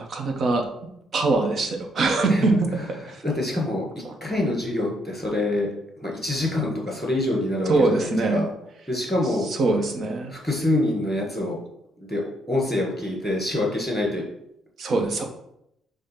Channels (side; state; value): both; normal; correlation 0.73